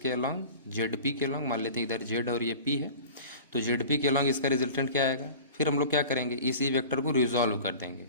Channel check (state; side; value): inverted; both; correlation -0.39